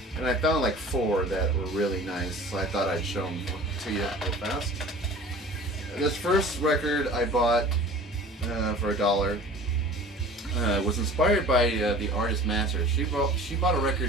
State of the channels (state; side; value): normal; both; correlation 0.43